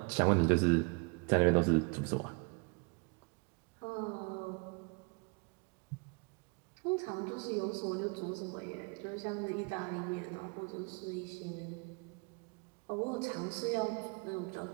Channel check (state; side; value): quieter; left; 32.1 dB